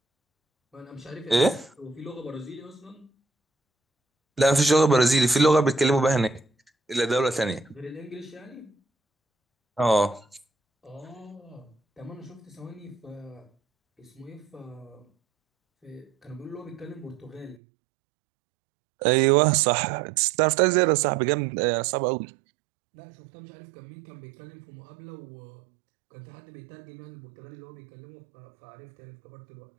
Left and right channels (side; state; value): left; drops out; at 17.6 s